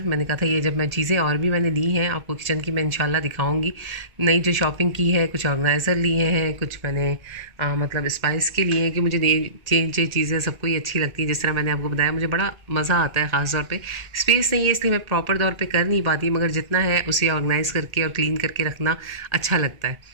मैंने कहा था ये जब मैं चीज़ें और भी मैंने ली हैं आपको किचन की मैं इंशाल्लाह दिखाऊंगी। नई जो शॉपिंग की है, कुछ ऑर्गेनाइज़र लिए हैं, कुछ मैंने मतलब स्पाइस के लिए हैं कि मुझे नई चेंज चीज़ें सबको ही अच्छी लगती हैं। जिस तरह मैंने आपको बताया मुझे बड़ा मज़ा आता है, ख़ास तौर पे स्पेस नहीं है इसलिए मैं प्रॉपर तौर पे कर नहीं पाती, मगर जितना है उसे ऑर्गेनाइज़ करके और क्लीन करके रखना अच्छा लगता है।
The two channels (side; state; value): left; late; 1.8 ms